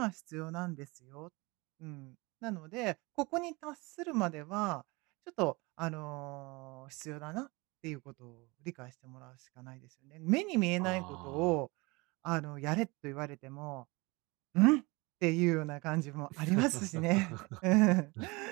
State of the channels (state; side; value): quieter; left; 25.1 dB